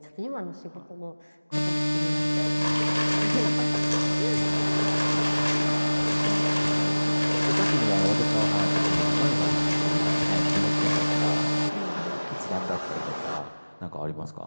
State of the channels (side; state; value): both; inverted; correlation -1.00